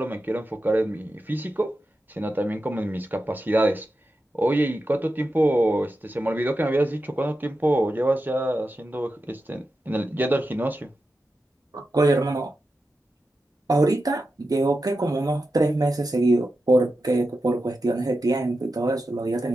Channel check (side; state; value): both; normal; correlation 0.90